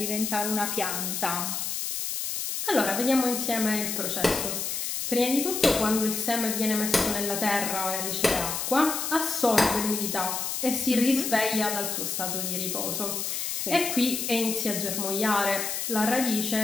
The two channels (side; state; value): left; noise; hiss, 2 dB below the sound